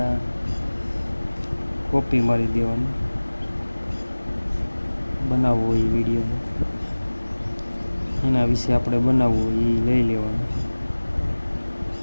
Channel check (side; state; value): both; inverted; correlation -1.00